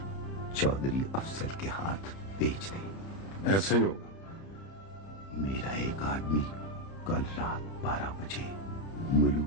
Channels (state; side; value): late; right; 31 ms